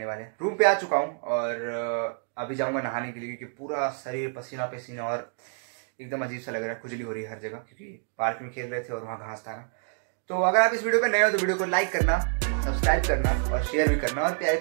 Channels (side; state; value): left; silent; 60 dB below the other